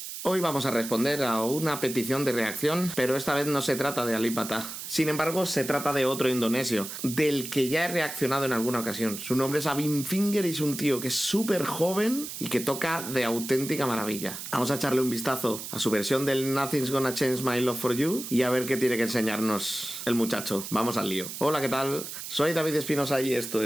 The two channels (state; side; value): noise; right; hiss, 8 dB below the sound